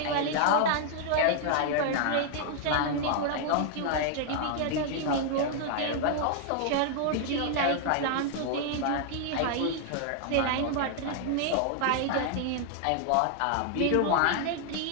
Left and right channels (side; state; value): both; different; correlation 0.00